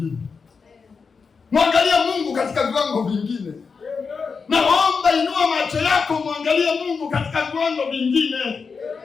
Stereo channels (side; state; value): right; quieter; 5.2 dB